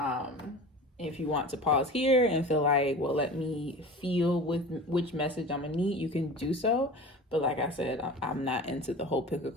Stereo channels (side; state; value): both; normal; correlation 0.36